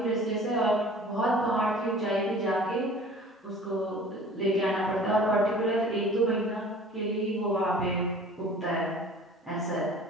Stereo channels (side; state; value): both; normal; correlation 0.46